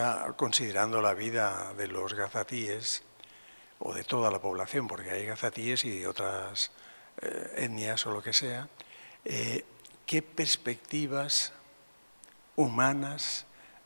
considerando la vida de los gazatíes, o de toda la población, porque hay gazatíes y de otras etnias o lo que sea, ¿qué perspectivas humanas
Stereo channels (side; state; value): both; inverted; correlation -1.00